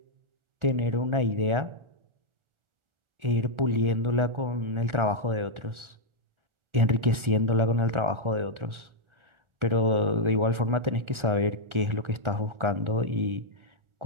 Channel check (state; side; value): late; left; 1.4 ms